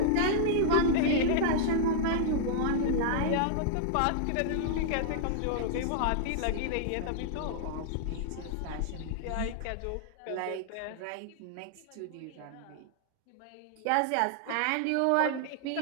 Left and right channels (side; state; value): both; different; correlation -0.01